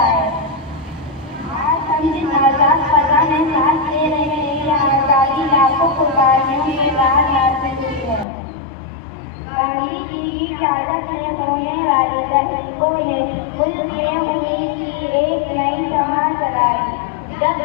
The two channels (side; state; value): right; drops out; at 8.2 s